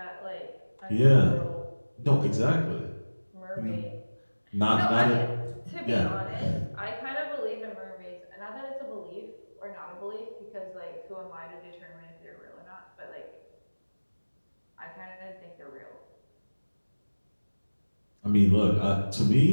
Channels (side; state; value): both; inverted; correlation -1.00